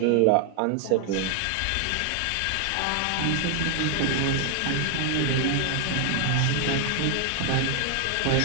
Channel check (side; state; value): both; different; correlation 0.00